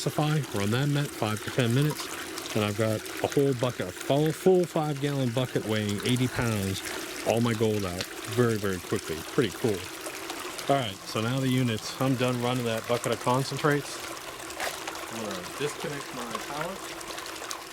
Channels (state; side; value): identical; both; correlation 1.00